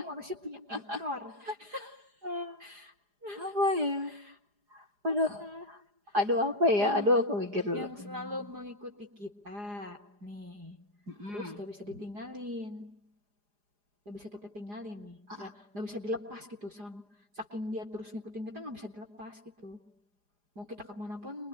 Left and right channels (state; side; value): late; left; 4.9 ms